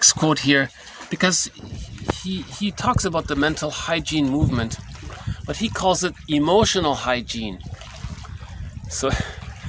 quote here because he talks about the mental hygiene movement, but he calls it emotional hygiene. So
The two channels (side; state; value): both; identical; correlation 1.00